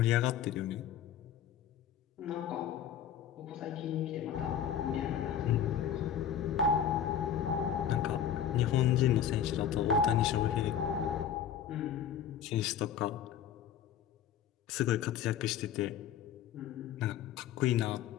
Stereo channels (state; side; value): quieter; right; 9.0 dB